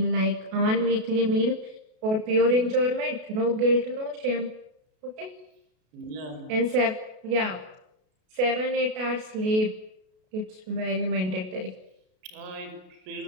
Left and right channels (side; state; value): left; late; 33 ms